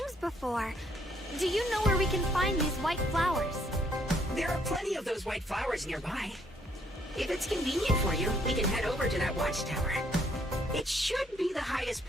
before. Do you know where we can find these white flowers? There are plenty of those white flowers nearby. If it's convenient for you, we can head over to that watchtower. It should be the highest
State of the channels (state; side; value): normal; both; correlation 0.68